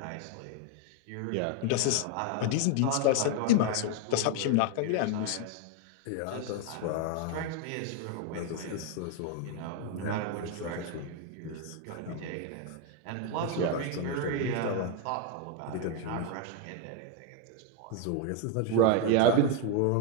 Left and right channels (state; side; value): different; both; correlation 0.01